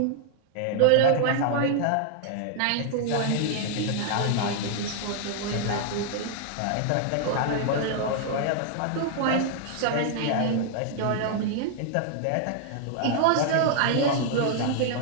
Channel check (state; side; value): different; both; correlation -0.01